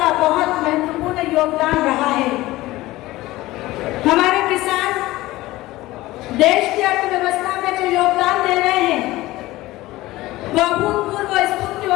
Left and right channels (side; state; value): right; quieter; 18.0 dB